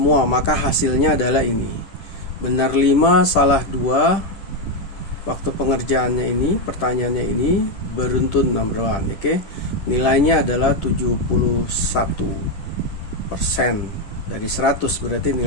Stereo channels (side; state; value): right; late; 10 ms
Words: maka hasilnya adalah ini. Benar 5, salah 2. Waktu pengerjaannya ini, pertanyaannya ini beruntun number 1. Oke. Nilainya adalah 71%. Dari 100 berarti